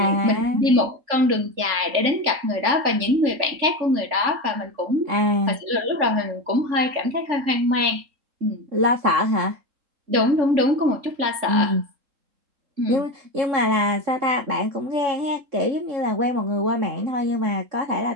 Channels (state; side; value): late; left; 3.5 ms